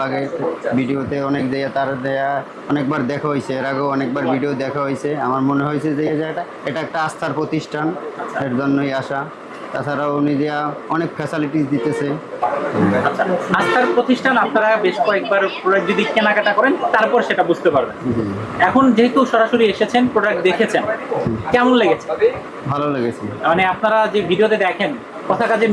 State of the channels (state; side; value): identical; both; correlation 1.00